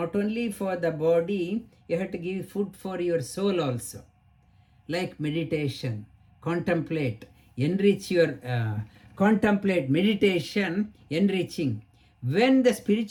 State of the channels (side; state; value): both; identical; correlation 1.00